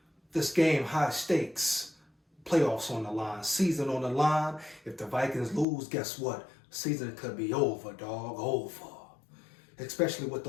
This game, high stakes, playoffs on the line, season on the line. If the Vikings lose, guess what? Season could be over, dog, over. Especially with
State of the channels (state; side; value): drops out; right; at 5.7 s